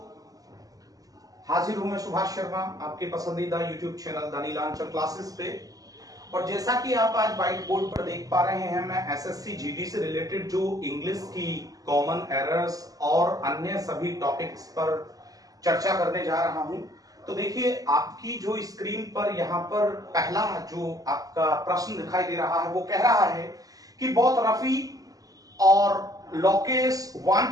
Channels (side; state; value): left; late; 0.17 ms